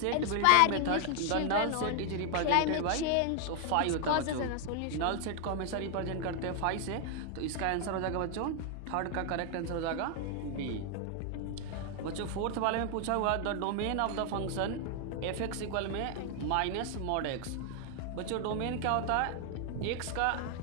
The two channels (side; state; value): both; different; correlation 0.00